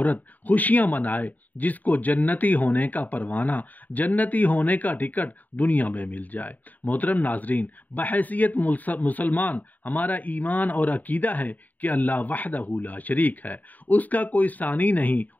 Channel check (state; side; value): late; right; 0.081 ms